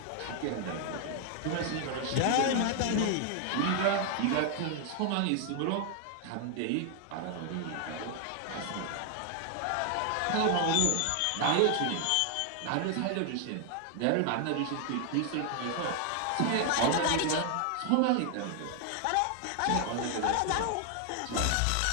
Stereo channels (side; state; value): both; different; correlation 0.00